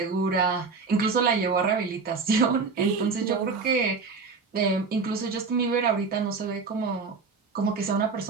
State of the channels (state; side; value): quieter; left; 4.7 dB